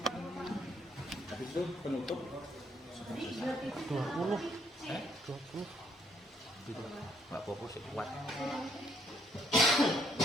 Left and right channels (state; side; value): normal; both; correlation 0.69